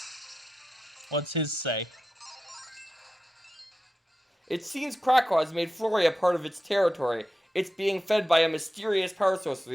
What's his say? It seems Krakow has made Florey a part of its territory. It's being fed by a mysterious power source, so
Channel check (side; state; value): both; normal; correlation 0.91